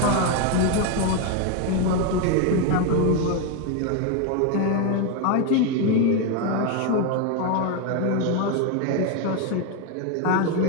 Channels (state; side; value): different; both; correlation 0.01